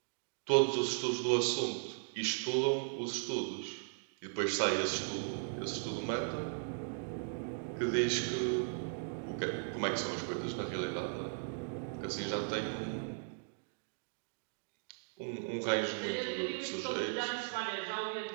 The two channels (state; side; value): silent; left; digital silence